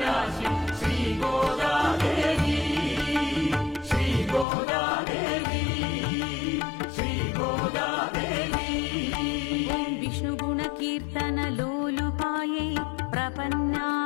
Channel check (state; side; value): drops out; right; at 4.5 s